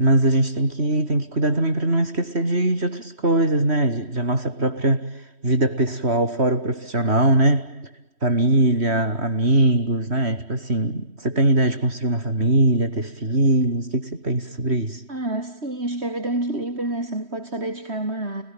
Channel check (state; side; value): late; left; 3.1 ms